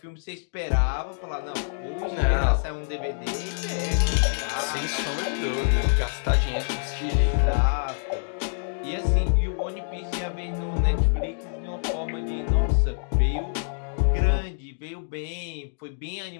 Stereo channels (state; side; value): silent; right; digital silence